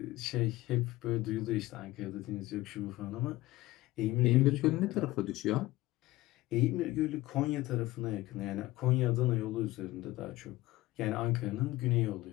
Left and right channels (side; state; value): right; quieter; 18.1 dB